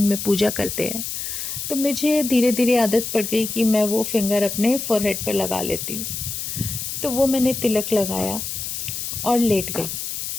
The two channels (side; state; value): left; noise; hiss, 5 dB below the sound